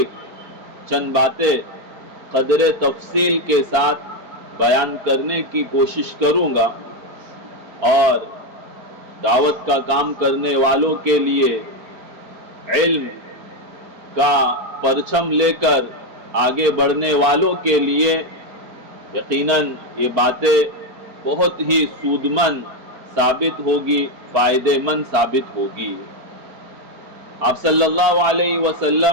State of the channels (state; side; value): late; left; 4.4 ms